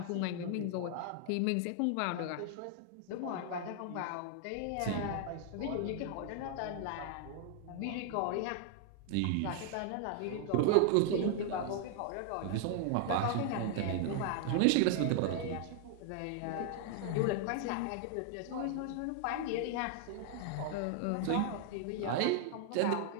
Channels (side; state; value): both; different; correlation 0.00